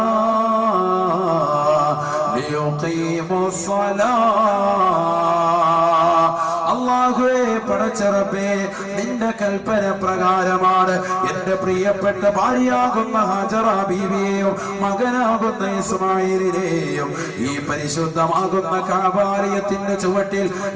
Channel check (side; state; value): both; identical; correlation 1.00